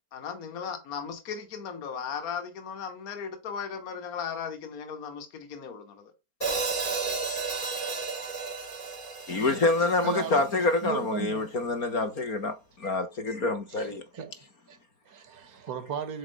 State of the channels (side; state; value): right; late; 4.3 ms